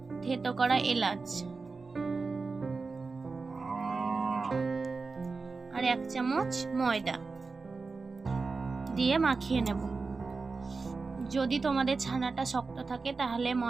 থেতো করা এলাচ আর 1 চামচ ময়দা দিয়ে মাখিয়ে নেব। যদি তোমাদের ছানাটা শক্ত থাকে তাহলে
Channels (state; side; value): quieter; left; 4.2 dB